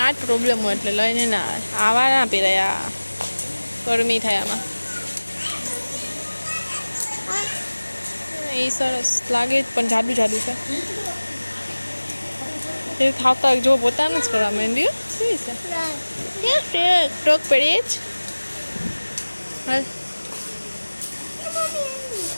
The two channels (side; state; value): both; inverted; correlation -1.00